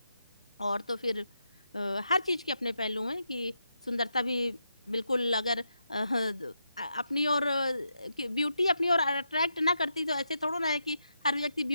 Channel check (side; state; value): both; inverted; correlation -0.84